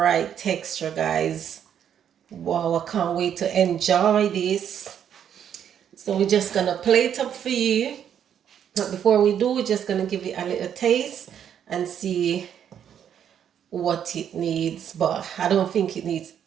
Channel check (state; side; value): quieter; left; 9.0 dB